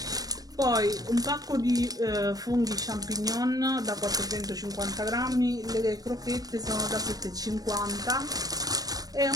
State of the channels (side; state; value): left; late; 0.18 ms